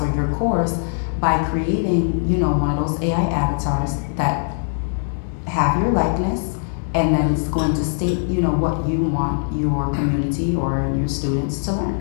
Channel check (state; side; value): silent; right; digital silence